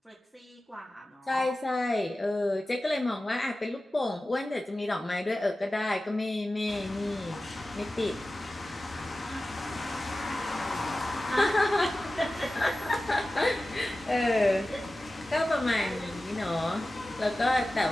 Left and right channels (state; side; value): normal; both; correlation 0.95